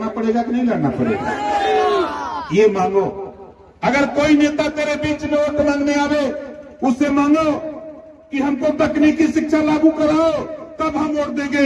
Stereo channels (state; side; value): identical; both; correlation 1.00